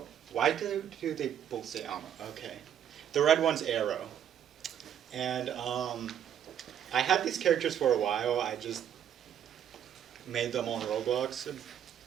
Why do they both say Amo? Okay. The red one's Arrow. And I had these characters for a while. I just made them on Roblox a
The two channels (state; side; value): quieter; left; 9.6 dB